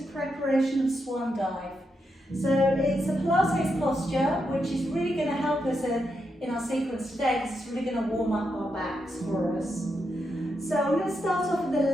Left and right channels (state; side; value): normal; both; correlation 0.83